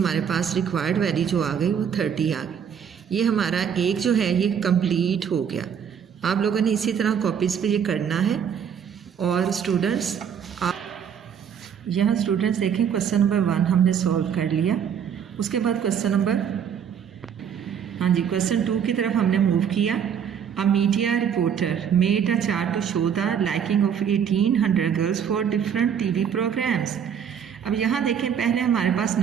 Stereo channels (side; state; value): left; quieter; 7.9 dB